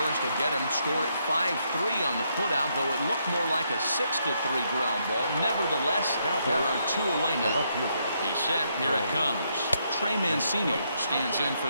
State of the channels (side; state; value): both; inverted; correlation -0.76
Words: will get him. Score at 5-3 on the putout, though it looked more like a 6-3 ground ball. Nevertheless, there are 2 away now. He's set. Here it comes. Trey Mancini stands in for